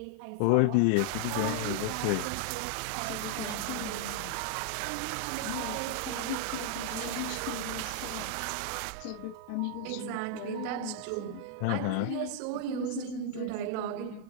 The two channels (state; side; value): different; both; correlation -0.01